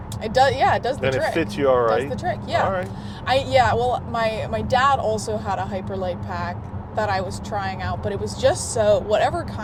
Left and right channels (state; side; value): identical; both; correlation 1.00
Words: It does. Yeah, it does the trick. And it fits you all right. Does the trick. Yeah. All right. Well, my dad also had a Hyperlight pack that I was trying out, but it was just so whatever